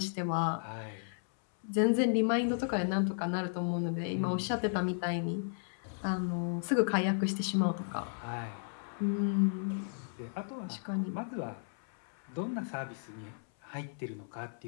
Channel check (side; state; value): right; silent; 55 dB below the other